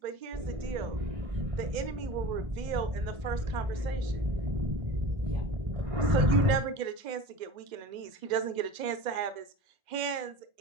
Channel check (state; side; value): late; left; 2.0 ms